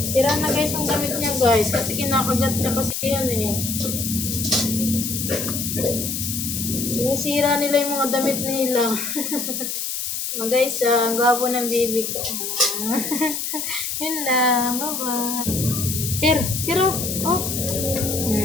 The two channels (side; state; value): left; noise; hiss, 3 dB below the sound